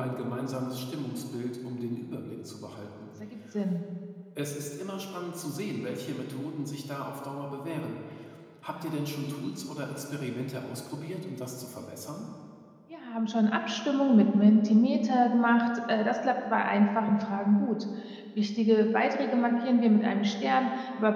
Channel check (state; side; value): identical; both; correlation 1.00